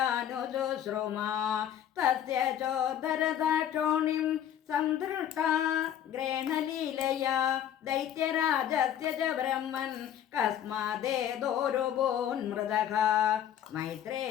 തസ്യ ചോദരദാക്ഷോണിം സംധൃഷ്ടാ ഗ്രേണലീലയാ ദൈത്യരാജസ്യ ച ബ്രഹ്മൻ കസ്മാദേതോരുഭൂന്മൃതഃ.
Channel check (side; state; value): right; quieter; 10.3 dB